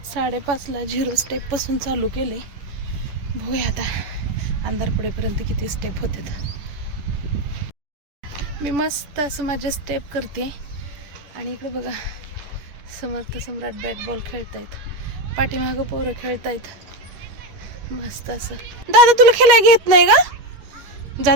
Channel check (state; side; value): late; left; 10 ms